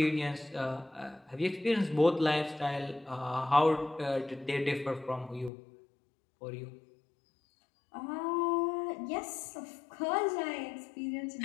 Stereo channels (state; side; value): drops out; right; at 5.5 s